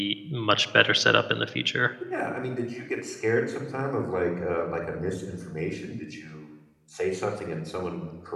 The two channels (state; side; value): identical; both; correlation 1.00